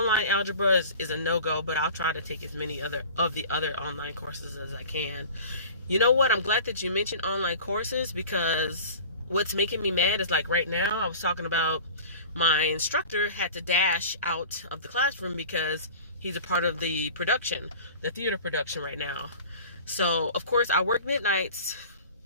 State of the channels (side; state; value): both; inverted; correlation -0.39